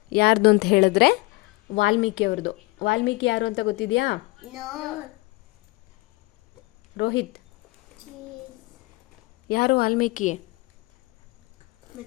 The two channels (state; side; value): quieter; right; 22.8 dB